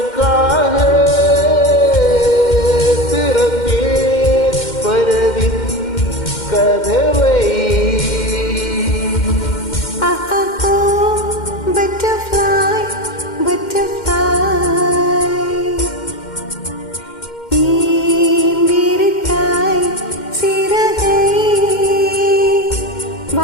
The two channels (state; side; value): late; right; 2.1 ms